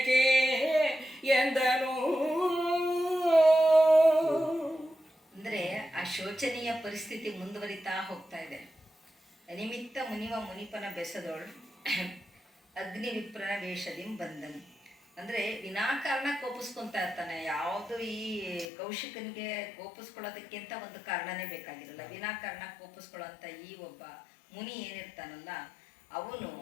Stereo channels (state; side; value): drops out; right; at 18.7 s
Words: ಎಂದನು. ಅಂದರೆ ಆ ಶೋಚನೀಯ ಪರಿಸ್ಥಿತಿ ಮುಂದುವರಿತಾ ಹೋಗ್ತಾ ಇದೆ. ಅನಿಮಿತ್ತ ಮುನಿಪನ ಬೆಸದೋಳು ಅಗ್ನಿ ವಿಪ್ರನ ವೇಷದಿಂ ಬಂದನು. ಅಂದರೆ ವಿನಾಕಾರಣ ಕೋಪಿಸ್ಕೊತಾ ಇರ್ತಾನೆ. ಯಾವುದು ಈ ಕೌಶಿಕನಿಗೆ ಕೋಪಿಸ್ಕೊಳ್ಳೋದಕ್ಕಿಂತ ಒಂದು ಕಾರಣನೇ ಬೇಕಾಗಿರಲ್ಲ. ವಿನಾಕಾರಣ ಕೋಪಿಸ್ಕೊಳ್ಳೋಂಥ ಈ ಒಬ್ಬ ಮುನಿ ಏನಿರ್ತಾನಲ್ಲ, ಅವನು